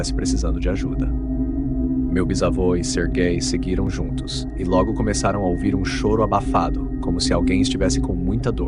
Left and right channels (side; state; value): both; identical; correlation 1.00